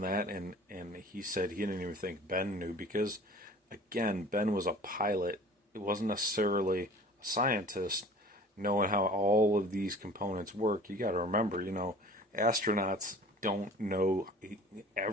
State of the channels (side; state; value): both; normal; correlation 0.45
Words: that, and he said he didn't even think Ben knew, because, again, Ben was a pilot. It wasn't necessarily a scientist knowing how all of these components work. You got to remember, astronauts don't know